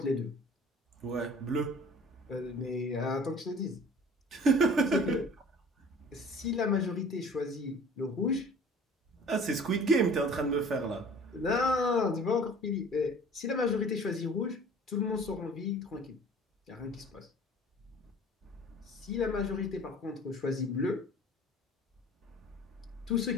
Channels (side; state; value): both; normal; correlation 0.47